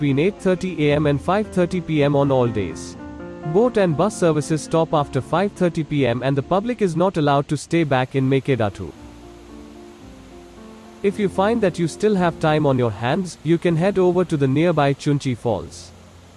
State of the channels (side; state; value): both; identical; correlation 1.00